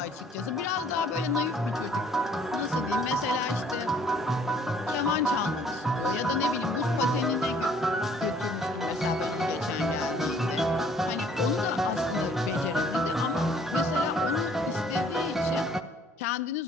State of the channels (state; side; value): normal; both; correlation 0.59